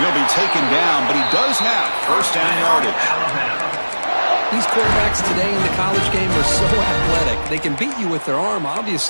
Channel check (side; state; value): both; inverted; correlation -1.00